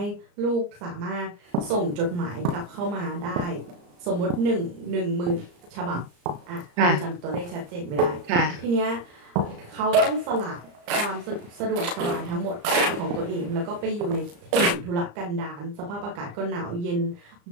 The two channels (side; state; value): left; late; 34 ms